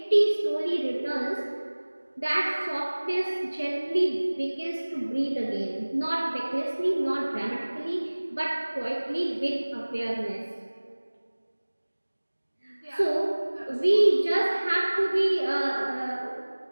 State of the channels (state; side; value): inverted; both; correlation -1.00